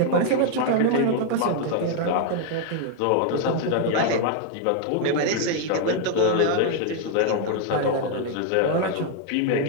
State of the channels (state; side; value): different; both; correlation 0.00